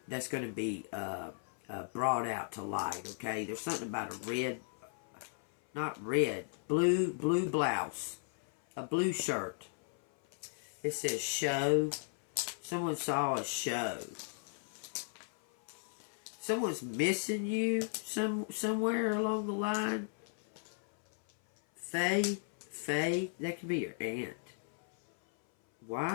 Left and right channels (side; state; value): right; silent; 54 dB below the other